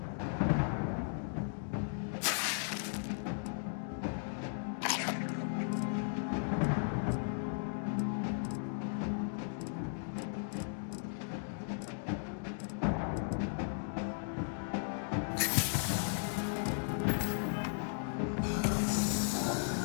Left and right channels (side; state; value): right; silent; digital silence